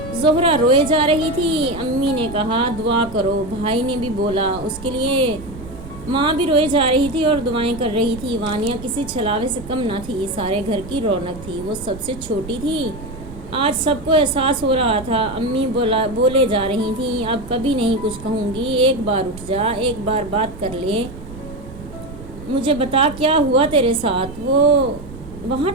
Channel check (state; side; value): noise; right; rumble, 14 dB below the sound